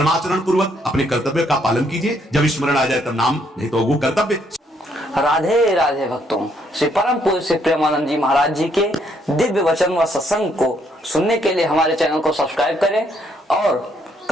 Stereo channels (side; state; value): both; normal; correlation 0.71